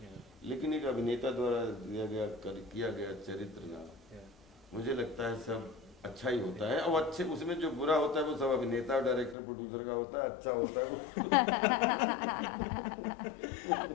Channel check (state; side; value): drops out; right; at 9.3 s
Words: लेकिन एक अभिनेता द्वारा किया गया चरित्र ना, मुझे लगता है सब अच्छा ही होता है। और अच्छे उसमें जो बुरा होता है वो सब अभिनेता, डायरेक्टर, प्रोड्यूसर का होता है, अच्छा होता है वो।